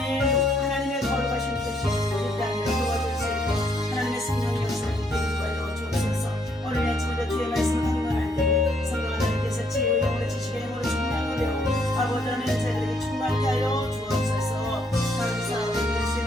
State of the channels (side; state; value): both; normal; correlation 0.70